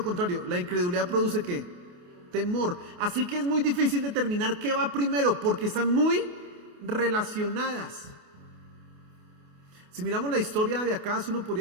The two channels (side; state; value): left; late; 28 ms